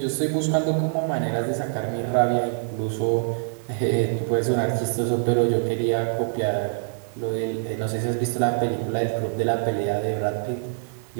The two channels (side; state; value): left; silent; 62 dB below the other